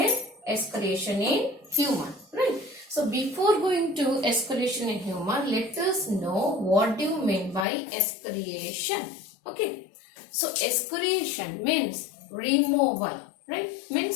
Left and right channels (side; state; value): right; drops out; at 7.7 s